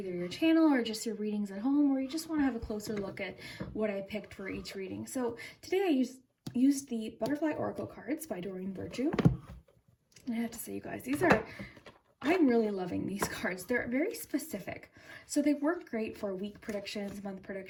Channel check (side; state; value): both; identical; correlation 1.00